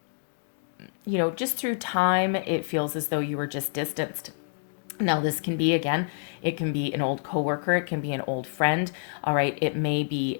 just through time, it feels as though you were just distanced. Now, this can be, again, it can be an old coworker, it can be an old friend, all right? It may be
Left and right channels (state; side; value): silent; right; digital silence